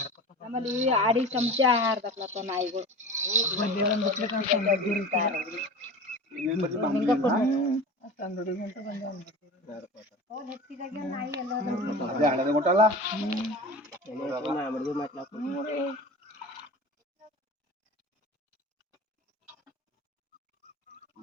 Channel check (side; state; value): both; normal; correlation 0.34